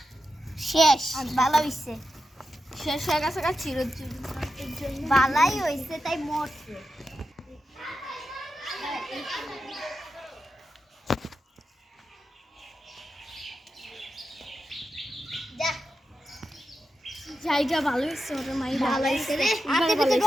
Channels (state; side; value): normal; both; correlation 0.89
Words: শেষ ভালো হইছে শেষ হয়ে গেছে চিরঞ্জীব বালাই হইছে তাই মরছে জায়গা ভালো হইছে ওরে মাই ভালো হইছে রে এবারে আপনি ভালো তো